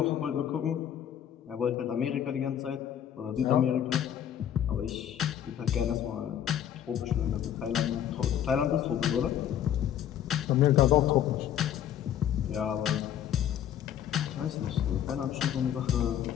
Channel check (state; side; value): quieter; right; 10.1 dB